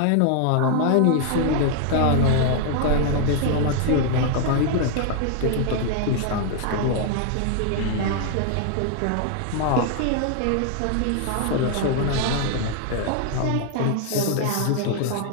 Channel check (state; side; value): different; both; correlation 0.00